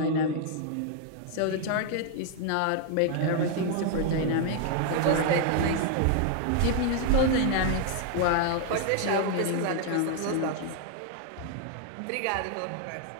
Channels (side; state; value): both; different; correlation 0.00